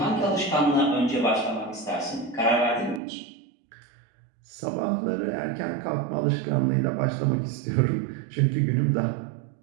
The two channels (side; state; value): left; drops out; at 3.0 s